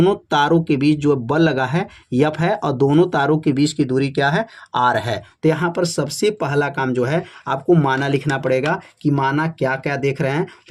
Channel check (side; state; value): both; identical; correlation 1.00